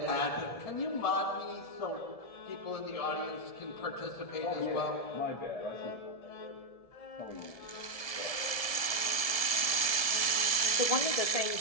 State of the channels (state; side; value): late; right; 1.7 ms